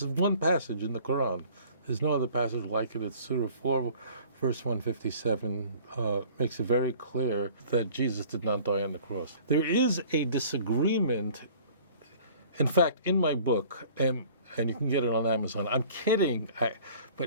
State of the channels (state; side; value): inverted; both; correlation -0.50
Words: one passage in the Quran. There's no other passage like it. It's Surah 4, verse 157, makes it very clear that Jesus did not die on the cross. There is a disagreement. In fact, in my book, and you can get it on Amazon, I'm kidding,